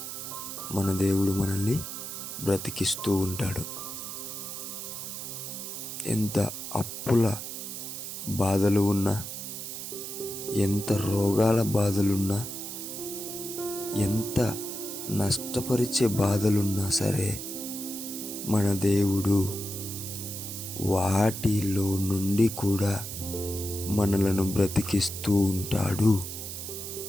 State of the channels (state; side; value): noise; right; hiss, 7 dB below the sound